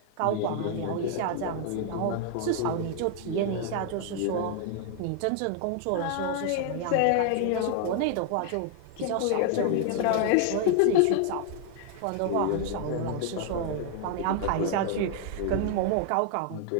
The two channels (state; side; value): different; both; correlation 0.00